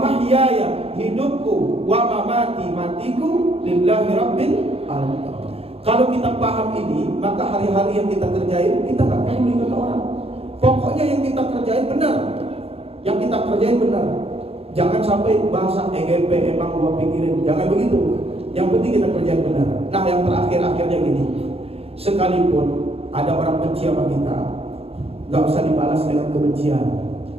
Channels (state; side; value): late; left; 0.28 ms